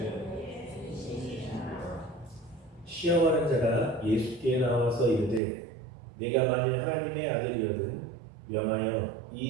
시험하는 자가 예수께 나와서 이르되 내가 만일 하나님의 아들이거든 명하여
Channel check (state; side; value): drops out; left; at 5.4 s